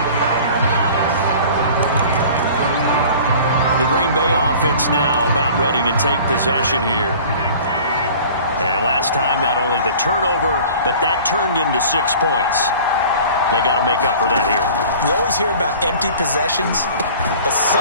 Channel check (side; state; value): both; inverted; correlation -0.45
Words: The Green Bay offense now about ready to take possession here. And last time, not only the turnover, but that turned into 6 points. They got to make up for that here. We always hear about empty possessions, but